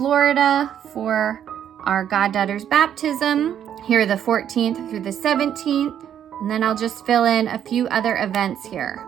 for our goddaughter's baptism here the 14th through the 17th. And then I'll just fill in a few other events here.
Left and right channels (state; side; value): quieter; left; 9.7 dB